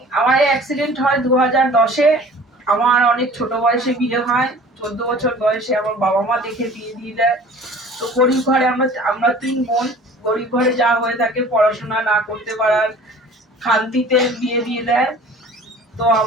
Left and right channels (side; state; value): both; normal; correlation 0.46